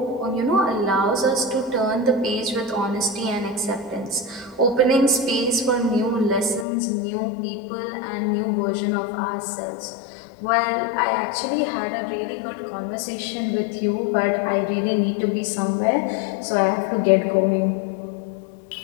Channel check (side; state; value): right; drops out; at 6.7 s